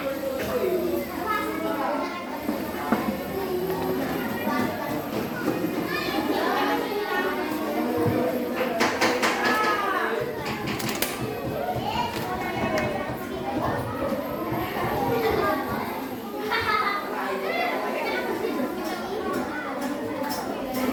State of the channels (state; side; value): identical; both; correlation 1.00